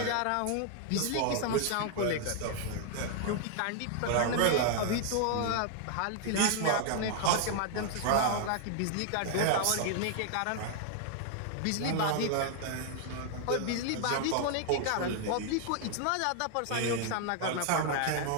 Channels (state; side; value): different; both; correlation 0.00